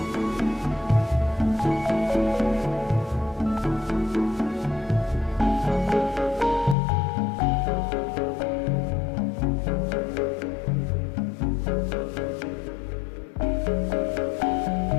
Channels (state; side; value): drops out; right; at 6.8 s